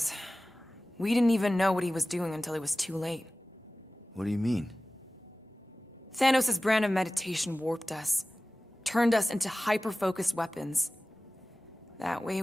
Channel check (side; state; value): both; normal; correlation 0.97